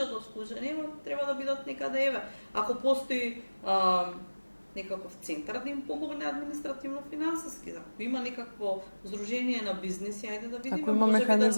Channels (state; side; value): inverted; both; correlation -1.00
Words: вклучени, но треба да бидат некаде еве. Ако постои некаков центар да им помогне административно-финансиски, ако има некакво здружение на бизниси, ајде да видиме. Ако има